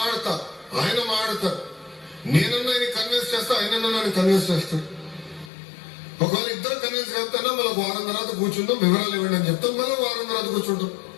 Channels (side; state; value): right; drops out; at 5.5 s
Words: ఆయన మాట్లాడతాడు. నేనన్నా ఆయన కన్విన్స్ చేస్తా, ఆయనన్నా నన్ను కన్విన్స్ చేస్తాడు. ఒకవేళ ఇద్దరు కన్విన్స్ చేస్తానా మళ్ళీ వారం తర్వాత కూర్చుందాం, వివరాలు ఇవ్వండి అని చెప్తాం. మళ్ళీ వారం తర్వాత కూర్చుంటాం.